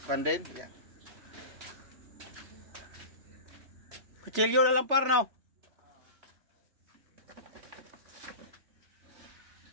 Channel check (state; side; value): late; left; 3.2 ms